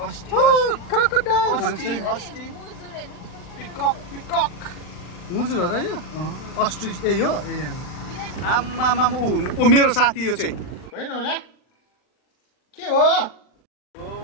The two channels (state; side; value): late; right; 39 ms